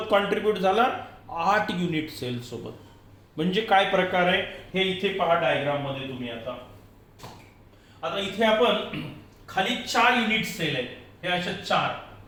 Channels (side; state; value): both; identical; correlation 1.00